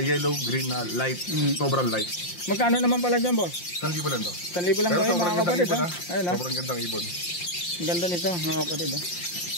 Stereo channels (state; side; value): late; right; 5.7 ms